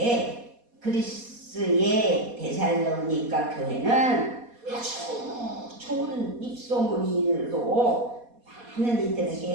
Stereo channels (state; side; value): late; left; 4.2 ms